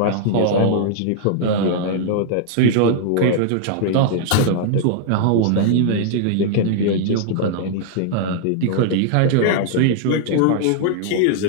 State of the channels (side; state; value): both; different; correlation -0.01